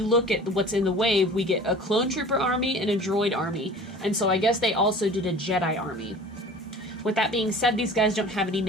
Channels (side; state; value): both; normal; correlation 0.43